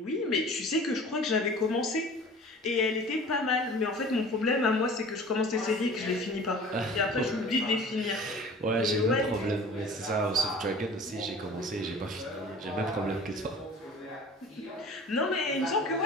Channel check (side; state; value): both; normal; correlation 0.43